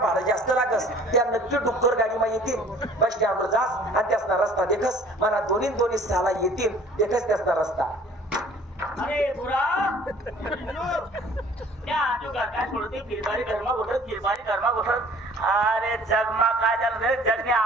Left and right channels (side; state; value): both; normal; correlation 0.52